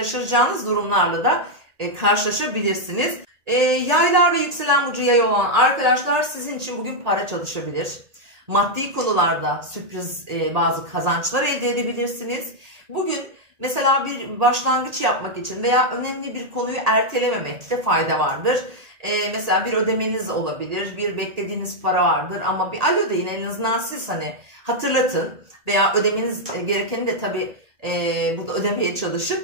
durumlarla da karşılaşabilirsiniz. Yaylar ve yükselen burcu yay olan arkadaşlar sizin için bugün para çalışabilir. Maddi konularda sürpriz bazı kazançlar elde edebilirsiniz. Bugün mesela bir başlangıç yapmak için veya önemli bir konuyu ertelememekte fayda vardır. Mesela bir ödemeniz olabilir, bir beklediğiniz para vardır ama bir alo deyin en azından siz hani hatırlatın veya ödemeniz gerekeni de tabii burada ödemeye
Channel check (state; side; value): late; left; 1.8 ms